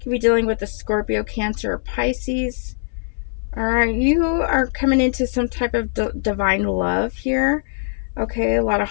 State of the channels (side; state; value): right; silent; 65 dB below the other